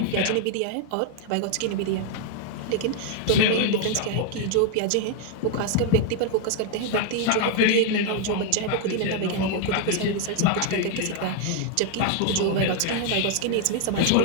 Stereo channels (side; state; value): both; different; correlation 0.00